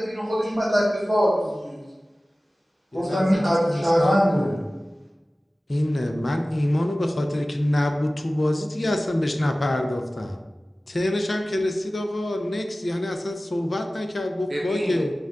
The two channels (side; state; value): both; normal; correlation 0.97